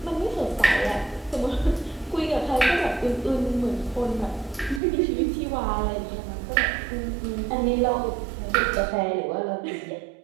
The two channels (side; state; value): left; drops out; at 4.8 s